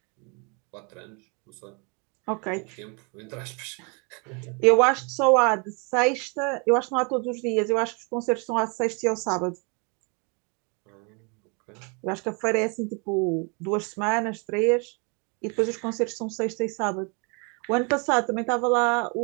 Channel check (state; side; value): quieter; left; 33.3 dB